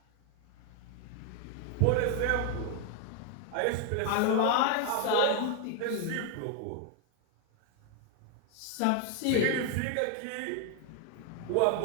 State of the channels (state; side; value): different; both; correlation 0.00